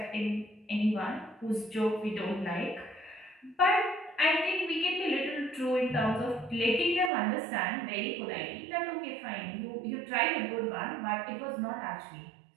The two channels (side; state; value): left; drops out; at 7.1 s